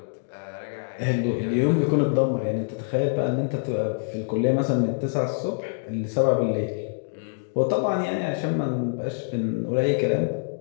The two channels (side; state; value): right; silent; digital silence